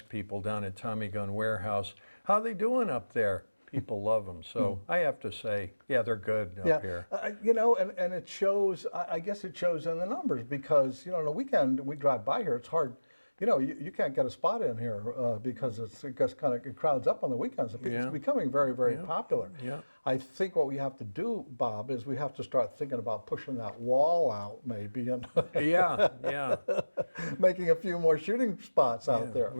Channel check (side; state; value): both; inverted; correlation -1.00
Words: people down at Tommy Gun Warehouse, how they doing up there? People love them. So I have to say, yeah, they're good up here. You know, and it shows, I guess it shows in the numbers, because, you know, on the weekend we drive by here, it's hard you know, you can't get a spot in here because it just kind of crowds up on the weekends. It's Yeah. becoming very, very popular. Yeah. I think what we have to do, Bob, is we have to start thinking about pushing that wall out maybe and Yeah. making a few more shooting spots out there.